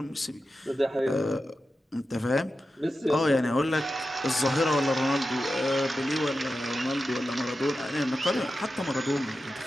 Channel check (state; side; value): normal; both; correlation 0.91